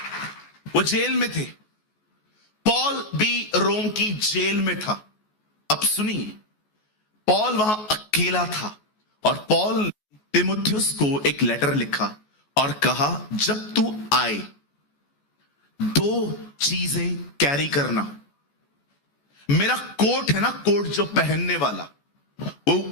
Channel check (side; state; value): right; late; 14 ms